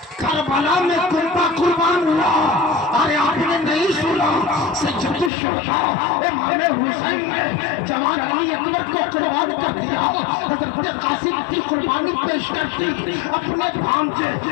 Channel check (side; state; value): right; drops out; at 5.3 s